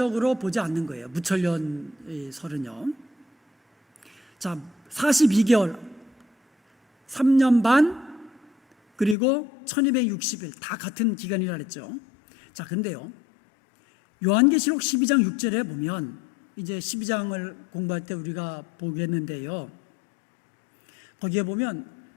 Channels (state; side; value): drops out; right; at 9.2 s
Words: 보지 않는 거예요. 무천년 설은요. 자, 42개월, 3년 반, 그리고 1260일 다 같은 기간이라 그랬죠. 자, 근데요. 요한계시록 12장 6절에 보면 이제 12장을 공부할 때 우리가 보겠는데요. 거기에 보면